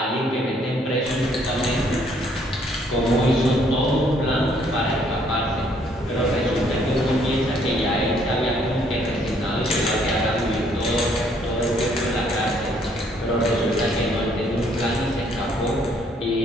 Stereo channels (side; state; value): both; normal; correlation 0.66